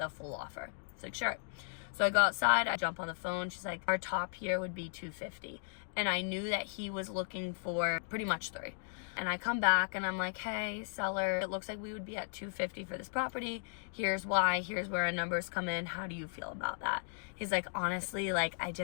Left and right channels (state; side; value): silent; right; digital silence